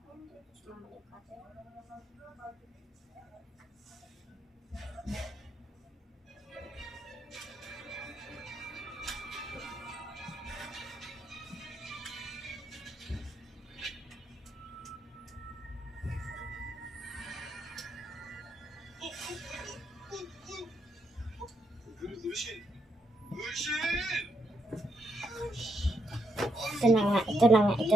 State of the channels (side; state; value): both; normal; correlation 0.78